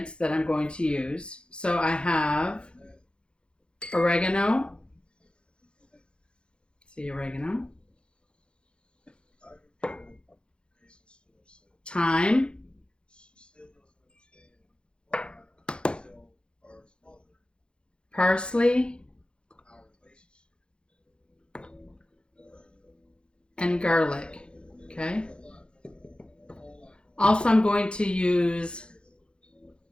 that I'm going to use. So I have oregano. See oregano. Thyme. Parsley. And garlic. Okay. Also, I'm going to use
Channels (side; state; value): right; late; 0.054 ms